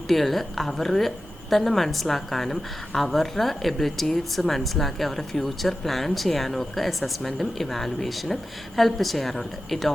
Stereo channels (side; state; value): both; normal; correlation 0.93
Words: അവർ തന്നെ മനസ്സിലാക്കാനും അവരുടെ എബിലിറ്റീസ് മനസ്സിലാക്കി അവരുടെ ഫ്യൂച്ചർ പ്ലാൻ ചെയ്യാനും ഒക്കെ അസസ്മെൻറ്റും ഇവാലുവേഷനും ഹെൽപ്പ് ചെയ്യാറുണ്ട്. It